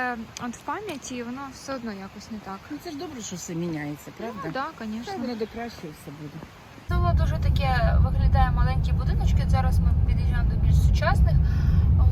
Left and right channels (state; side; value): identical; both; correlation 1.00